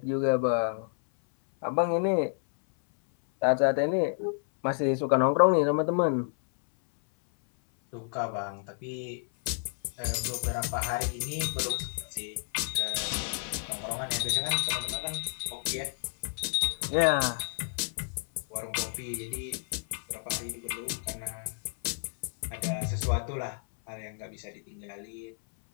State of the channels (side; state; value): right; silent; 58 dB below the other